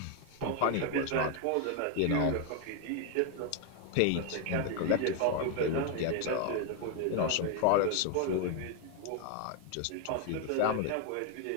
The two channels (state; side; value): different; both; correlation 0.01